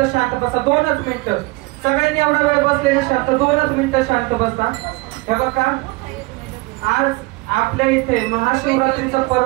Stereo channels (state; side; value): quieter; left; 23.8 dB